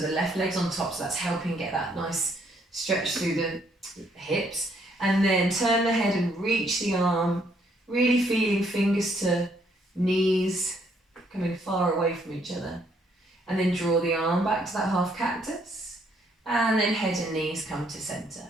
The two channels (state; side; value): normal; both; correlation 0.69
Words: the left leg's on top, so that's helping get that nice stretch through the hips. And then turn the head and reach the arm, really feeling fingers to knees coming far away from each other. And then draw the arm back to that half cactus. And then head and knees come to center